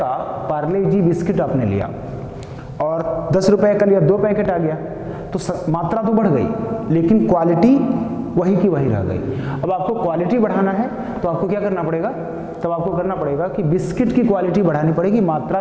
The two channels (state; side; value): identical; both; correlation 1.00